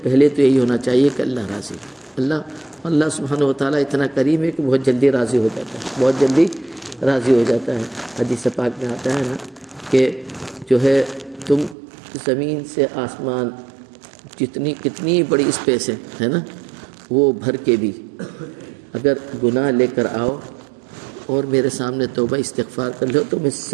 پہلے تو یہی ہونا چاہیے کہ اللہ راضی ہے۔ اللہ سبحانہ و تعالیٰ اتنا کریم ہے کہ بہت جلدی راضی ہو جاتا ہے، بہت جلدی راضی ہو جاتا ہے۔ حدیث پاک میں آتا ہے نا کہ جو ہے تم زمین سے آسمان کتنی بڑی اسپیس ہے نا، وہ بھر کے بھی اگر گناہ لے کر آؤ اور میرے سامنے توبہ استغفار کر لو تو میں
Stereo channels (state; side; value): drops out; left; at 11.8 s